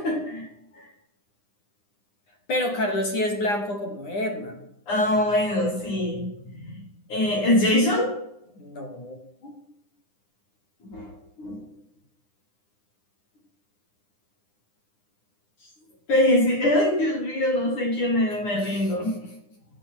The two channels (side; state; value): right; late; 9.8 ms